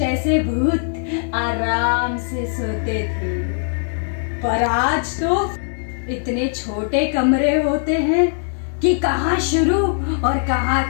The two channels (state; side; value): silent; right; digital silence